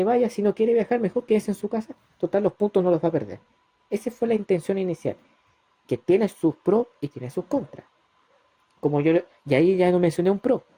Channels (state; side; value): identical; both; correlation 1.00